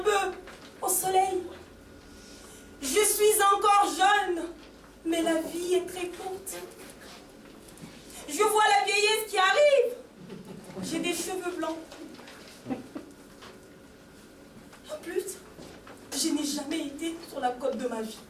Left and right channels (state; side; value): identical; both; correlation 1.00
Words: peu au soleil. Je suis encore jeune, mais la vie est très courte. Je vois la vieillesse qui arrive. J'ai des cheveux blancs. En plus, je n'ai jamais été sur la côte de ma vie.